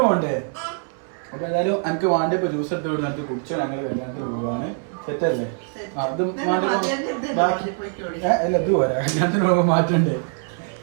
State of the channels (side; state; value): left; silent; 56 dB below the other